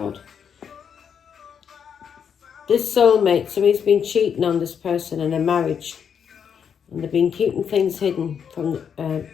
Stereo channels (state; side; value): quieter; right; 7.5 dB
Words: This soulmate, somebody's been cheating on this person in a marriage. And they've been keeping things hidden from